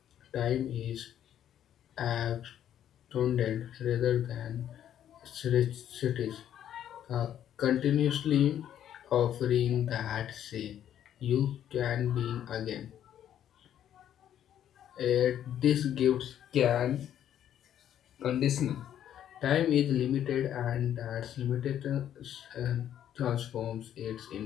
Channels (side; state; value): right; quieter; 10.5 dB